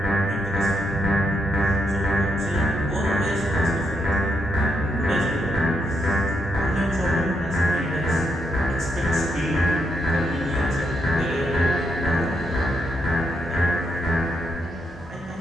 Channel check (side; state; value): both; normal; correlation 0.80